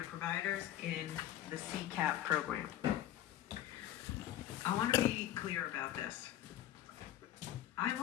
providers in the CCAP program. I want to be clear about this. I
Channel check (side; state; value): right; quieter; 12.8 dB